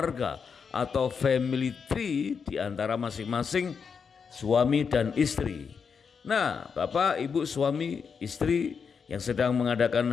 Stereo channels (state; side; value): quieter; right; 6.1 dB